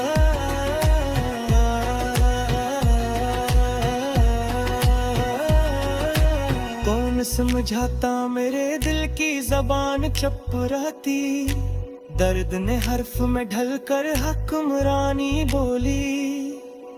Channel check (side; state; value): both; identical; correlation 1.00